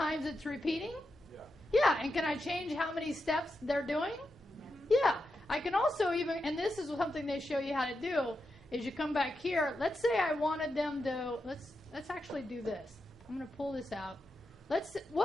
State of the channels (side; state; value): both; normal; correlation 0.87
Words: it's repeating? Yeah, and can I change how many steps they're doing? Yeah, I can also even, and this is something they show you how to do, is you come back here. Let's say I wanted them to, let's actually do this. I'm going to pull this out.